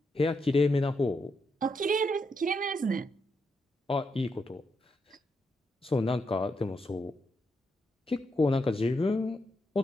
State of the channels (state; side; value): normal; both; correlation 0.82